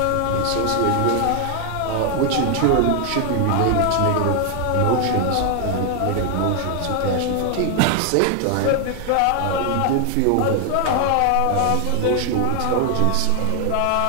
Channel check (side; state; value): both; different; correlation 0.00